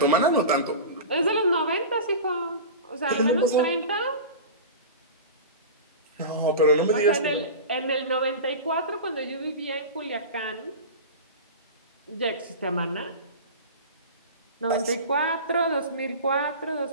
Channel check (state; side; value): inverted; both; correlation -0.30